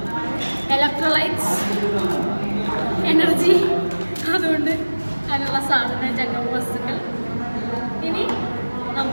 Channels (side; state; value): both; inverted; correlation -1.00